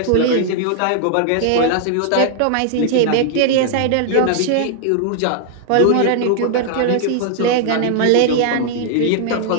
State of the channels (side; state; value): both; different; correlation 0.00